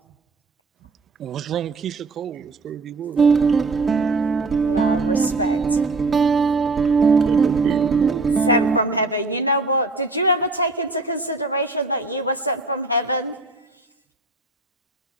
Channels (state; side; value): quieter; left; 3.5 dB